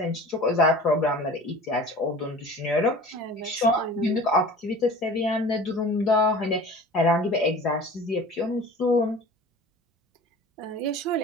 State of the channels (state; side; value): normal; both; correlation 0.41